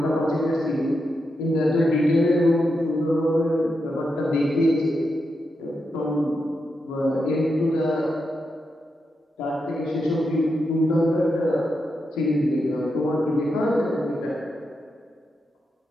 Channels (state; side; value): normal; both; correlation 0.85